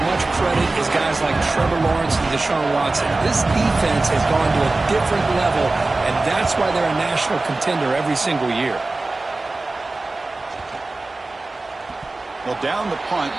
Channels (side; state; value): left; quieter; 3.2 dB